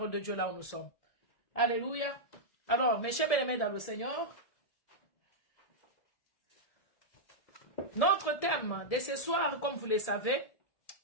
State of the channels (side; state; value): right; late; 1.7 ms